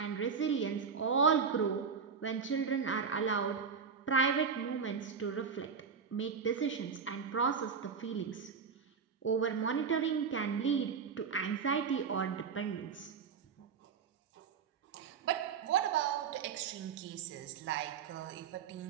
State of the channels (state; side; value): quieter; left; 6.1 dB